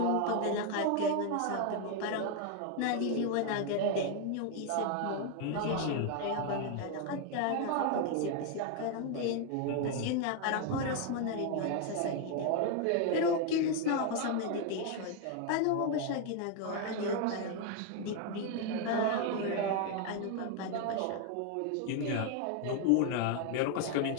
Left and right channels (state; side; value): different; both; correlation 0.01